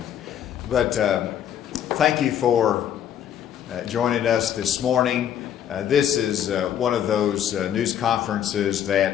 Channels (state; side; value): quieter; right; 9.9 dB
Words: But thank you for joining us this morning. This is one of those news conferences